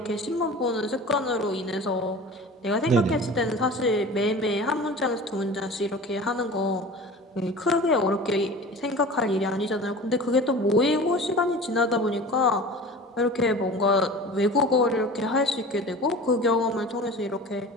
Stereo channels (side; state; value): both; normal; correlation 0.38